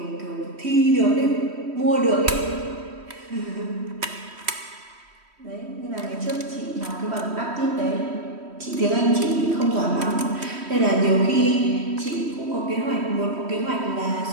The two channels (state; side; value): late; left; 3.1 ms